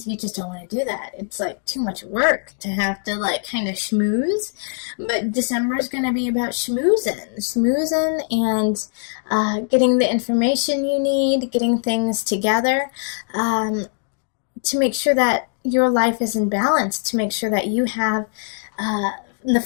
you just don't want to do that. It's like too much work to have to kind of schmooze. But December is going to be about schmoozing and getting the information you need, getting things together, to make sure that your life is in balance, to make sure that you have the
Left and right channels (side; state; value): right; silent; digital silence